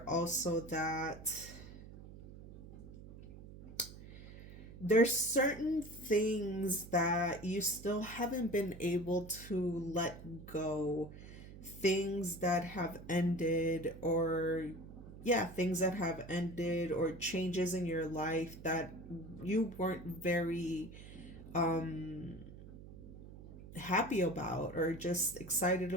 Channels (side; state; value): right; noise; hum, 15 dB below the sound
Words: also that there's certain things that you still haven't been able to let go, things that have ended, or yeah, things that have ended, or changes in your life that you weren't very um happy about or just excited